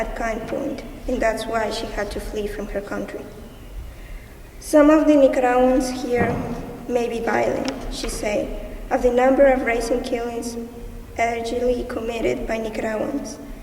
gunpoint, and that's why she had to flee from her country. "Some of the Nicaraguans here may be violent," she said, "of the number of recent killings allegedly committed by Nicaraguans,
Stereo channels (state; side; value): identical; both; correlation 1.00